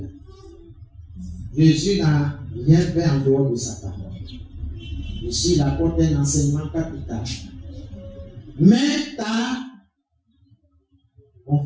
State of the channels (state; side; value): identical; both; correlation 1.00